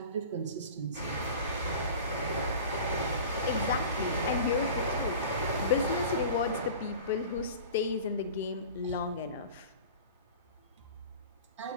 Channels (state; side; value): inverted; both; correlation -0.38